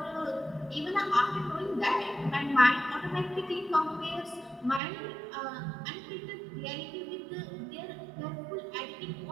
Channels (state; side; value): drops out; left; at 4.8 s